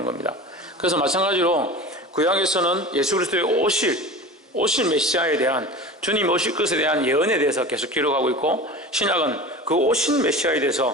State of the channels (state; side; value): normal; both; correlation 0.34